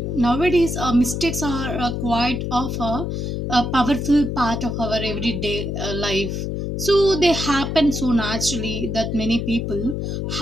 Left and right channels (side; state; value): left; noise; hum, 3 dB below the sound